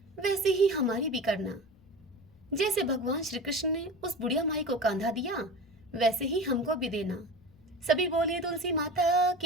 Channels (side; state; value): left; noise; rumble, 27 dB below the sound